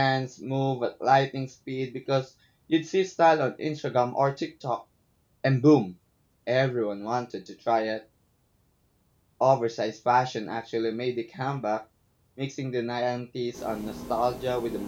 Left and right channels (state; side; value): identical; both; correlation 1.00